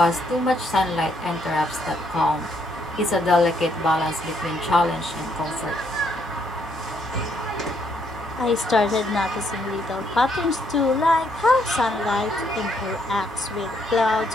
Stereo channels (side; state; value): both; normal; correlation 0.72